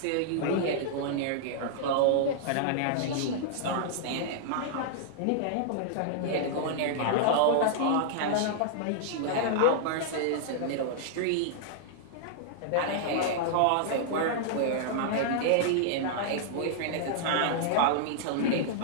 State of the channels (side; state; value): both; different; correlation -0.02